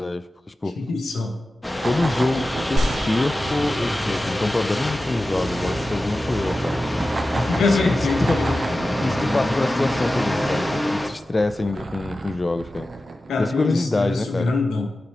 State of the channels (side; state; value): both; normal; correlation 0.94